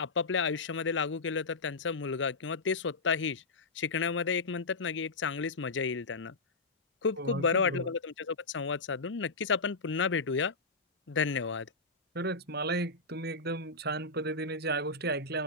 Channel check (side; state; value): right; quieter; 3.5 dB